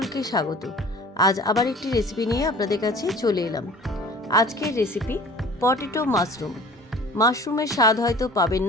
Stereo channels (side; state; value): both; normal; correlation 0.45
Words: স্বাগত। আজ আবার একটি রেসিপি নিয়ে আপনাদের কাছে চলে এলাম। আজকের রেসিপি পটেটো মাশরুম। মাশরুমের স্বাদ হয়তো পাবেন